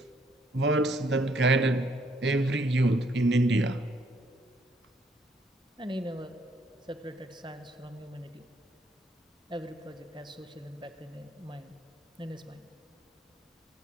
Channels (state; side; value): normal; both; correlation 0.68